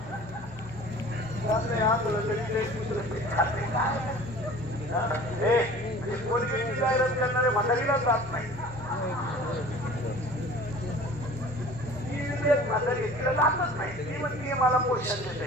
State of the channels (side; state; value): both; normal; correlation 0.45